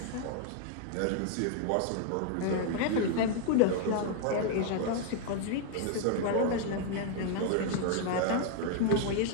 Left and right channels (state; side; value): different; both; correlation 0.00